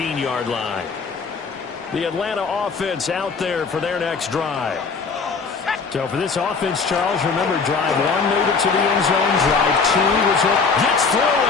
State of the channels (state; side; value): quieter; right; 4.9 dB